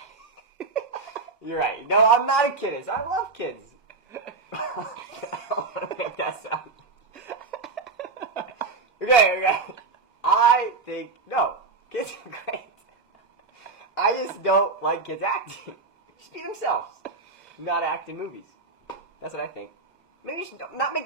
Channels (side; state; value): left; quieter; 4.1 dB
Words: You're right. No, I'm not a kidist. I love kids. I don't want to make that sound. Okay. I think, no, kids are great. I just don't like kids acting. Just be themselves. Not act in movies. That's what I think. Maybe you should not make